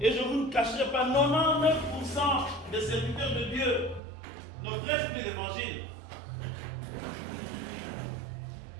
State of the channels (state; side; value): drops out; left; at 4.0 s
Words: et je ne vous ne cacherai pas, 99% des serviteurs de Dieu ne prêchent plus l'évangile.